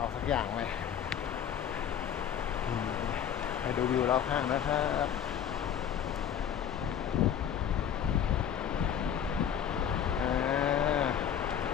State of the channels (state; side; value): quieter; right; 8.9 dB